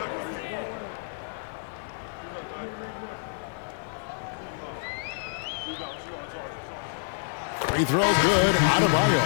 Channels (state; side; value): silent; right; digital silence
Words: Free throw good. Adebayo.